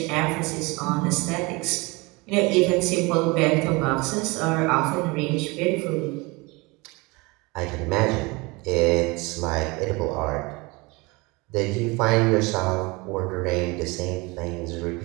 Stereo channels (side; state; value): left; quieter; 25.3 dB